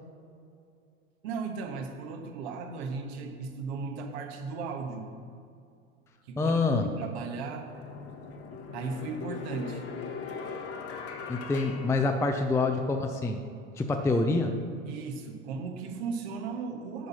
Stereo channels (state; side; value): normal; both; correlation 0.54